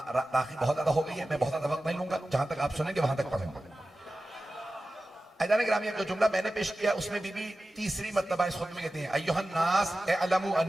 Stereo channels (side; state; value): both; normal; correlation 0.95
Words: راخی بہت زیادہ ہو گئی ہے، میں بہت زیادہ وقت نہیں لوں گا، جہاں تک آپ سنیں گے وہاں تک پڑھوں گا۔ عزیزان گرامی، جو جملہ میں نے پیش کیا اس میں بی بی تیسری مرتبہ اس خطبے میں کہتے ہیں ایھا الناس اعلموا